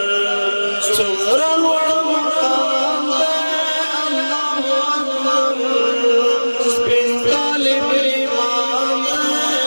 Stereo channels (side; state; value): both; inverted; correlation -1.00